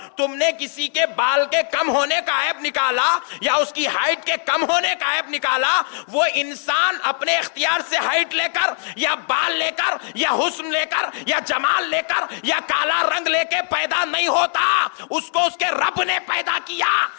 تم نے کسی کے بال کے کم ہونے کا عیب نکالا یا اس کی ہائٹ کے کم ہونے کا عیب نکالا، وہ انسان اپنے اختیار سے ہائٹ لے کر یا بال لے کر یا حسن لے کر یا جمال لے کر یا کالا رنگ لے کے پیدا نہیں ہوتا، اس کو اس کے رب نے پیدا کیا،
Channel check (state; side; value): silent; right; digital silence